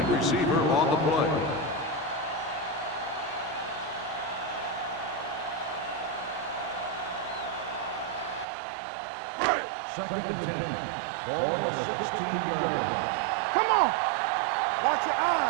Receiver on the play. Second and 10. Ball on the 16-yard line. Come on. Watch your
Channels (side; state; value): left; drops out; at 8.5 s